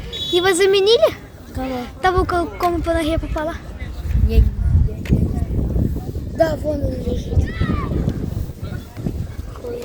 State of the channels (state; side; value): identical; both; correlation 1.00